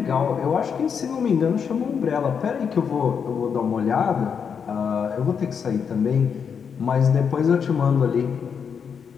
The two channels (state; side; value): quieter; right; 6.8 dB